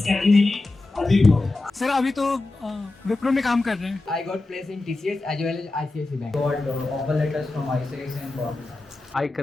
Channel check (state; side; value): quieter; right; 3.1 dB